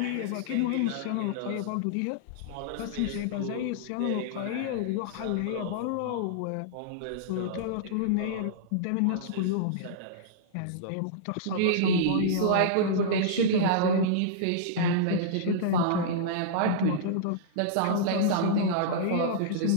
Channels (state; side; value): different; both; correlation -0.02